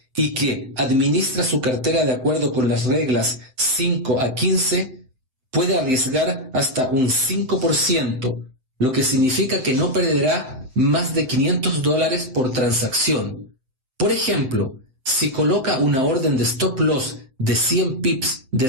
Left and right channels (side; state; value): left; late; 7.8 ms